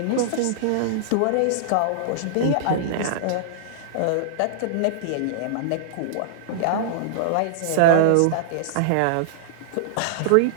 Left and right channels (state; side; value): different; both; correlation -0.02